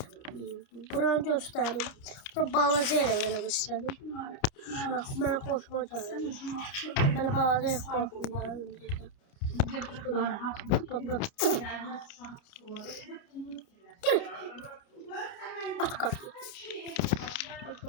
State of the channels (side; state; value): right; late; 29 ms